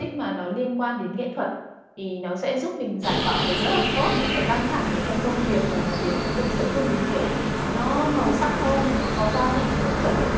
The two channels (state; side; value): identical; both; correlation 1.00